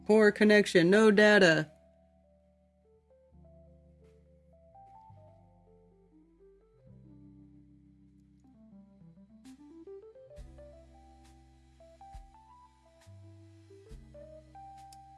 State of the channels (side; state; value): both; identical; correlation 1.00